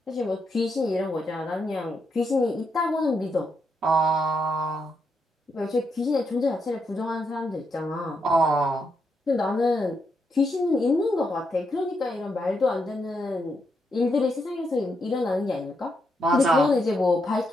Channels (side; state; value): both; normal; correlation 0.81